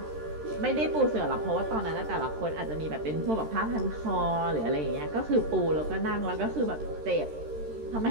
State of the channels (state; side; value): late; left; 13 ms